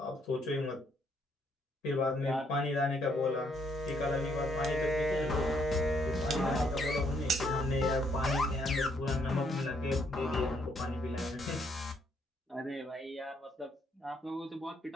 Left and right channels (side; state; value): both; normal; correlation 0.71